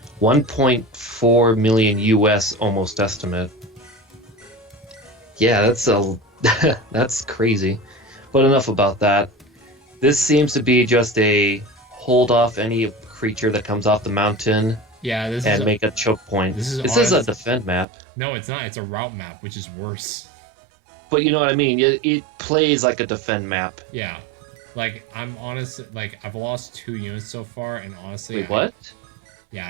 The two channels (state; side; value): drops out; left; at 17.9 s